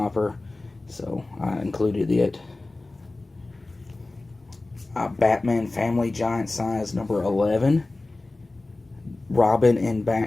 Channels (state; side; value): quieter; right; 3.1 dB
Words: her. So I included it. Batman Family Giant Size number 11. Robin and